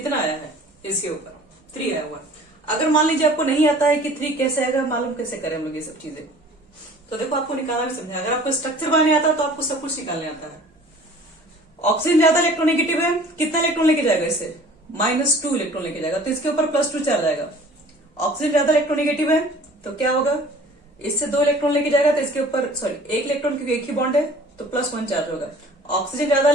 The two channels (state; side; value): normal; both; correlation 0.48